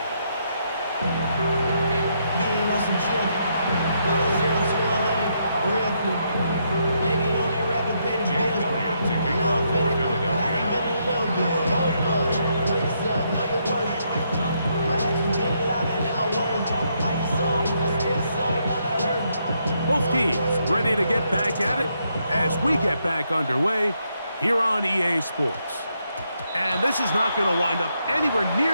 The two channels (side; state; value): both; inverted; correlation -0.76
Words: Being on some chill. teams ready to get back at it as we get back underway here on EA Sports. And this is not going to wind up anywhere